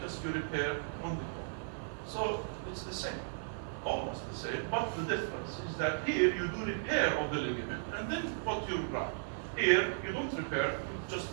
just you repair on the bone. So it's the same, almost the same, but the difference is that here you do repair of the ligament and then put your graft. Here you don't repair, you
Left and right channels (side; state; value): left; silent; digital silence